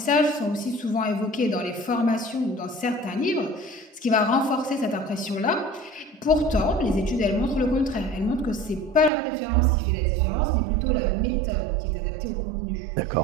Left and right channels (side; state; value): left; drops out; at 9.1 s